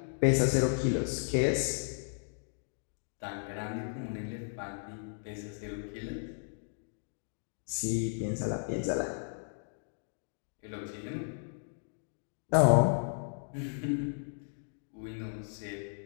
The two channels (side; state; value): right; silent; digital silence